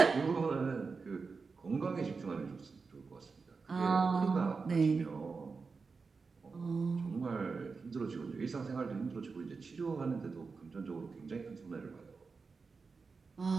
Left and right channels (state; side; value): quieter; left; 4.7 dB